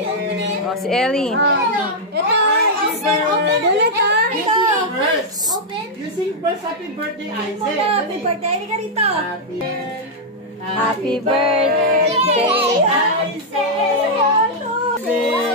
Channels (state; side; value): normal; both; correlation -0.04